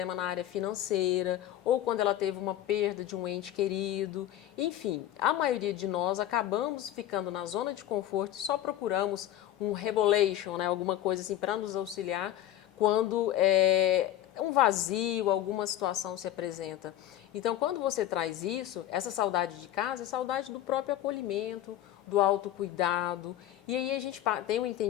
na área financeira, ou quando ela teve uma perda de um ente querido. Enfim, a maioria de nós acabamos ficando na zona de conforto e só procuramos um revelation, né, alguma coisa assim para nos auxiliar quando um vazio, alguma situação se apresenta. Então, quando você traz isso, essa saudade de casa é saudade do próprio acolhimento, do autocuidado. E aí a gente tem um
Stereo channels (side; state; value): right; quieter; 12.7 dB